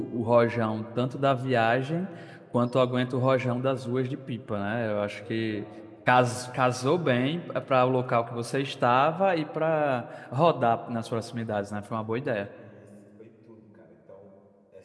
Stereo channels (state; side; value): identical; both; correlation 1.00